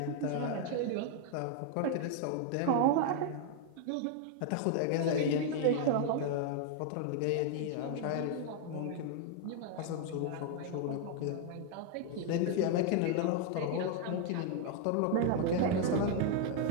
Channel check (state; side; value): different; both; correlation 0.00